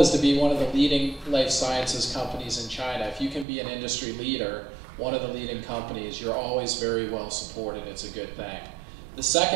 to be one of the leading life sciences companies in China. If you can be an industry leader, one of the leading companies, you're always very well supported. It's a good thing. The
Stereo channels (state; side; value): drops out; left; at 3.5 s